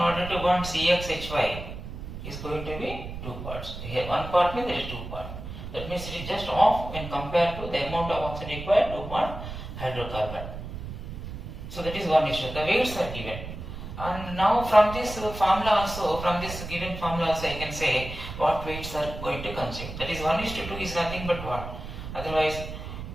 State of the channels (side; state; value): right; noise; rumble, 9 dB below the sound